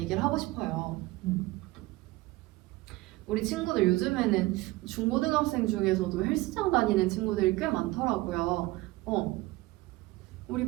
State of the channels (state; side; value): quieter; left; 19.5 dB